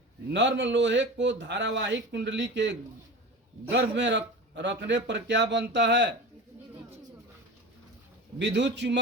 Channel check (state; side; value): normal; both; correlation 0.32